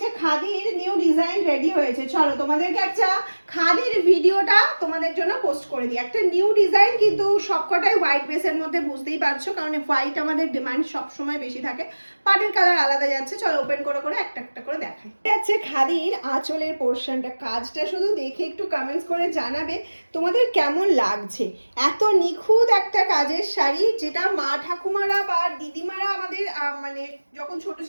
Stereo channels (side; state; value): both; inverted; correlation -1.00